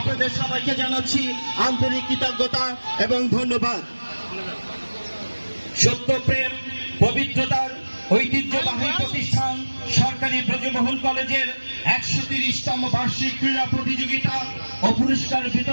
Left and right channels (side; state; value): both; inverted; correlation -1.00